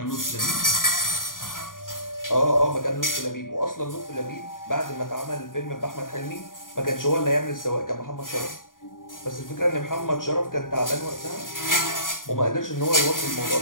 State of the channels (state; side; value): late; right; 0.90 ms